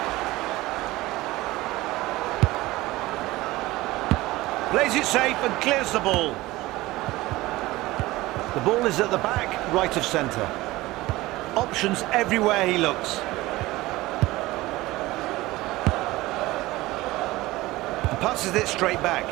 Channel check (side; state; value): left; quieter; 18.9 dB